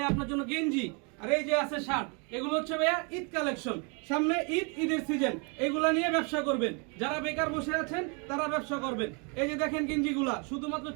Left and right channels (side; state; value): left; quieter; 34.4 dB